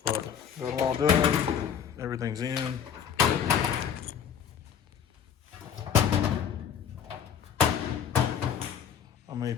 But got it all done, everything's in. I may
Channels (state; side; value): quieter; right; 8.3 dB